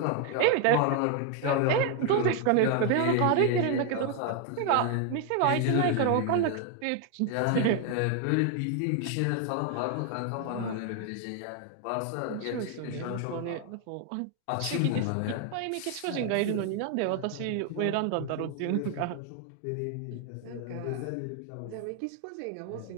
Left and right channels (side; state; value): both; different; correlation 0.01